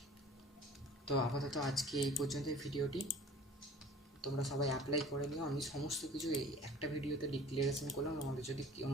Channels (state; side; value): normal; both; correlation 0.46